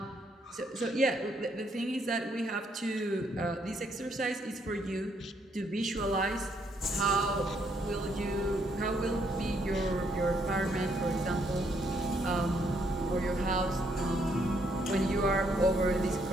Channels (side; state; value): both; normal; correlation 0.72